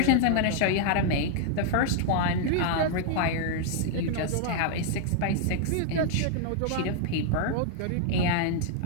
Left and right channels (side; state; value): both; different; correlation 0.00